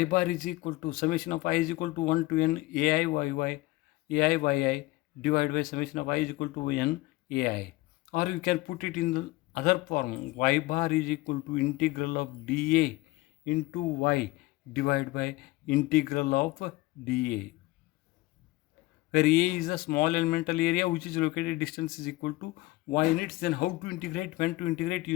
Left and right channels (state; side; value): quieter; right; 19.4 dB